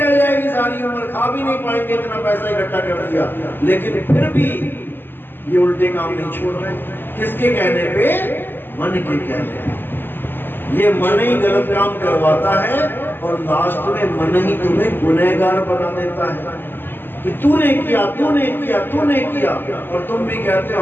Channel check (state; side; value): late; right; 0.096 ms